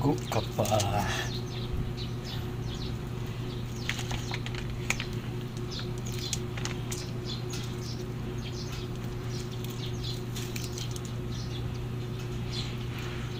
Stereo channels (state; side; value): identical; both; correlation 1.00